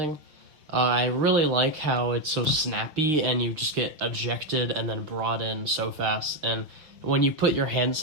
I really like how it's so snappy, and you just get ejected and then brought in so fast. And when you put your hands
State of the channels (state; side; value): late; left; 6.2 ms